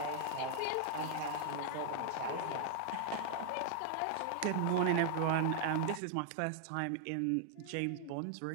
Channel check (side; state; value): both; different; correlation 0.00